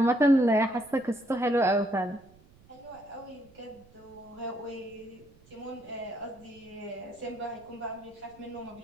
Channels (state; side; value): noise; right; rumble, 27 dB below the sound